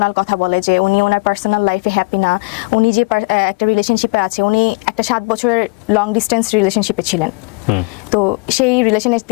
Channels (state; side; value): quieter; right; 30.1 dB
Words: কথা বলে, যে উনি ওনার পার্সোনাল লাইফে হ্যাপি না, উনি যে একটা রিলেশনশিপে আছে, উনি একটা 7 বছরের লং ডিস্টেন্স রিলেশনশিপে ছিলেন, তো সেই রিলেশনে